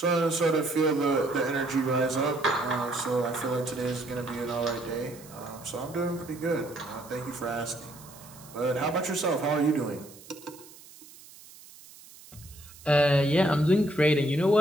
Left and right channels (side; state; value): right; noise; hiss, 20 dB below the sound